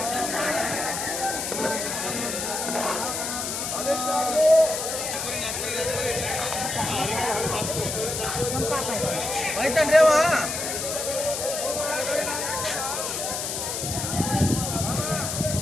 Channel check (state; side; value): noise; left; hiss, 3 dB below the sound